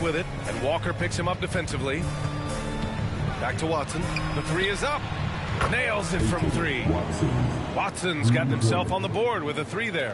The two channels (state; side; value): identical; both; correlation 1.00